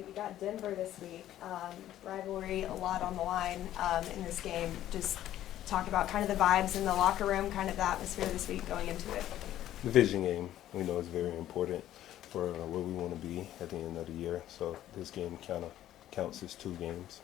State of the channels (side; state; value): right; quieter; 12.7 dB